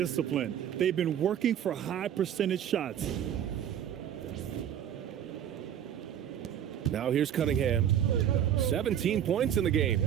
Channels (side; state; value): left; quieter; 9.8 dB